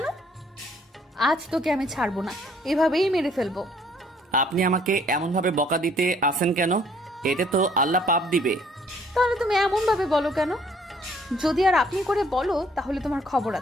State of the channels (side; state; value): both; normal; correlation 0.62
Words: আজ তোকে আমি ছাড়বো না, এভাবেই মেরে ফেলবো। আপনি আমাকে এমনভাবে বকা দিতে আসেন কেন? এতে তো আল্লাহ পাপ দিবে। তাহলে তুমি এমন ভাবে বলো কেন? যদি আর আপনি করে বলো তাহলে তোমার খবর